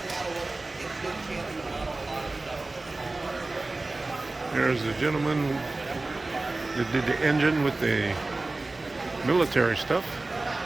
There's the gentleman that did the engine with the military stuff.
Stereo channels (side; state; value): left; quieter; 3.2 dB